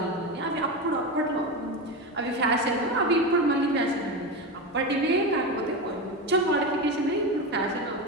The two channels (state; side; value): normal; both; correlation 0.19